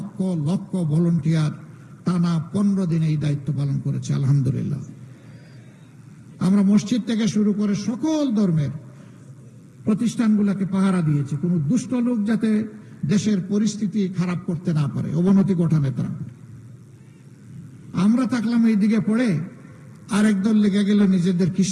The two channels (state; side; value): identical; both; correlation 1.00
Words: লক্ষ ভলান্টিয়ার টানা 15 দিন এই দায়িত্ব পালন করেছে। আলহামদুলিল্লাহ। আমরা মসজিদ থেকে শুরু করে সকল ধর্মের প্রতিষ্ঠানগুলোকে পাহারা দিয়েছি, কোনো দুষ্ট লোক যাতে দেশের পরিস্থিতি খারাপ করতে না পারে, অবনতি ঘটাতে না পারে। আমরা থাকলাম এই দিকে পড়ে, আরেক দল লেগে গেল নিজেদের